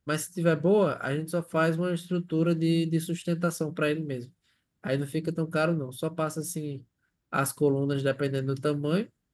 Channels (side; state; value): both; identical; correlation 1.00